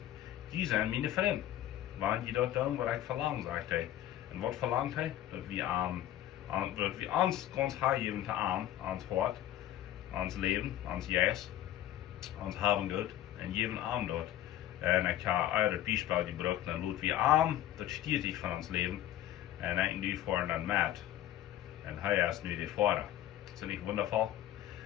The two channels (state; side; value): quieter; right; 12.8 dB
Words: die sind meine Freunde. Wenn die dort tun, was ich verlange, sagt er. Und was verlangt er? Dass wir uns ganz hergeben zu ihm, ans Hort, ans Leben, ans Jes, ans Haben Gott, und jeden Abend dort. Und ich habe eure Beispiel gebracht, und laut wie arm, das steht sich von uns Leben, und ich nu vorne dann Matt. Und er ist nu der Vater. Ist das nicht wundervoll?